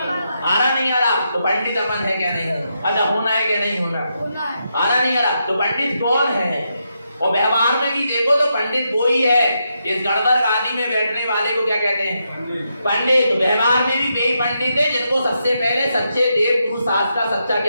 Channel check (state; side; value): inverted; both; correlation -0.83